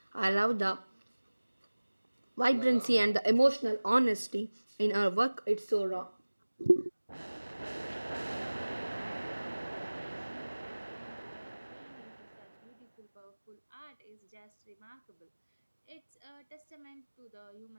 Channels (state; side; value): inverted; both; correlation -1.00